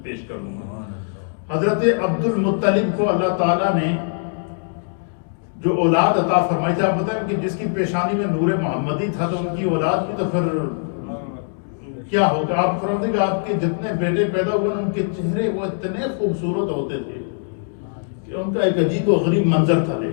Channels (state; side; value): silent; right; digital silence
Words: پیش کر دوں گا۔ حضرت عبد المطلب کو اللہ تعالیٰ نے جو اولاد عطا فرمائی تھی، آپ بتائیں کہ جس کی پیشانی میں نور محمدی تھا، تو ان کی اولاد بھی تو پھر کیا ہوگا؟ آپ فرمائیں کہ آپ کے جتنے بیٹے پیدا ہوئے ان کے چہرے وہ اتنے خوبصورت ہوتے تھے کہ ان کا ایک عجیب و غریب منظر تھا